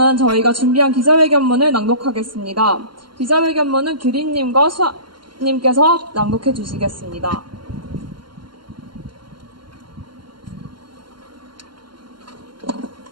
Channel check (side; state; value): left; late; 0.72 ms